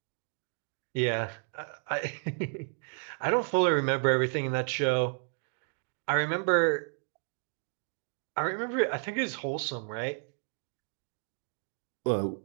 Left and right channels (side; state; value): left; silent; 56 dB below the other